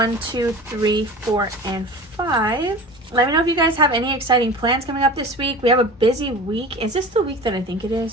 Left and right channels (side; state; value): both; normal; correlation 0.36